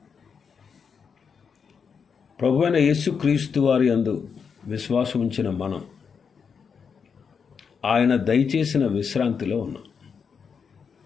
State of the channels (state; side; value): quieter; right; 6.2 dB